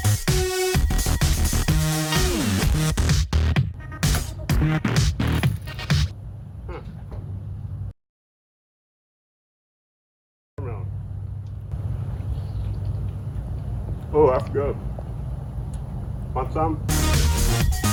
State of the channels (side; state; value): both; identical; correlation 1.00